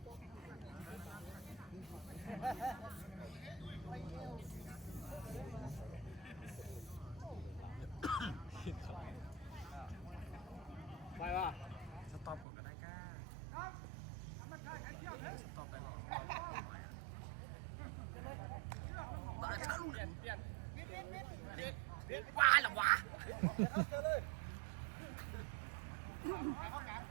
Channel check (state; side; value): drops out; left; at 12.5 s